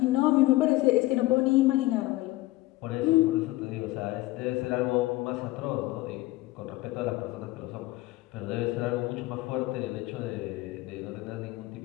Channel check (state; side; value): quieter; right; 18.9 dB